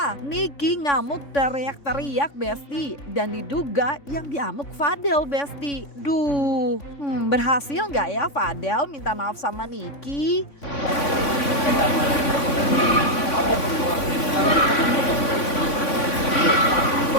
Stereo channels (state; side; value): late; right; 3.5 ms